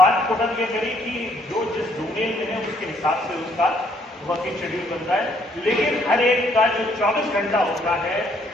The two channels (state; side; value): normal; both; correlation 0.67